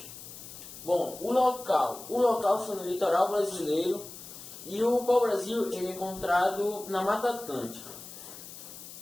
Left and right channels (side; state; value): left; noise; hiss, 14 dB below the sound